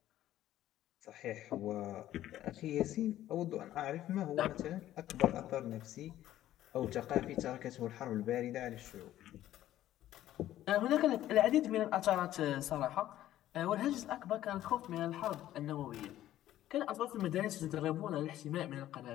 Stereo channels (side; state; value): right; quieter; 13.2 dB